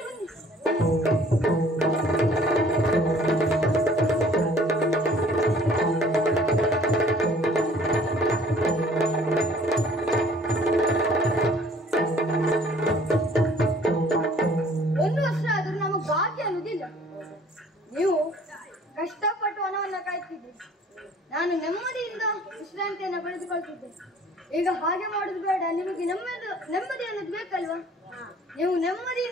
ಬನ್ನಿ. ನೀವು ಕಷ್ಟಪಟ್ಟು ವನವನ್ನ ಕಾಯ್ತಿದ್ದೀರಿ, ನಾನು ನೆಮ್ಮದಿಯಿಂದ ವಿಶ್ರಾಂತಿಯನ್ನು ಪಡೆದುಕೊಳ್ತಿದ್ದೆ. ಈಗ ಹಾಗೆ ಮಾಡುದು ಬೇಡ, ನಿಮಗೆ ನೆಮ್ಮದಿ ಅನ್ನೋದು ಬೇಕಲ್ವಾ? ನೀವು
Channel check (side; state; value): both; normal; correlation 0.54